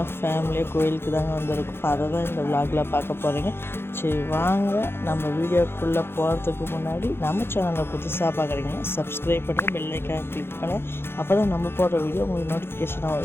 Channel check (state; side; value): late; right; 0.11 ms